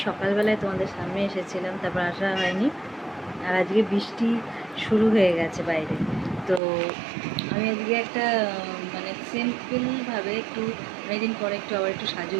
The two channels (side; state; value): left; drops out; at 6.6 s